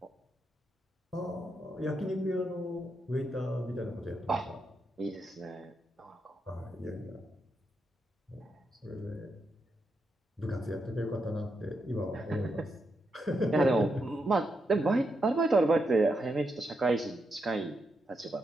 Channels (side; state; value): both; normal; correlation 0.83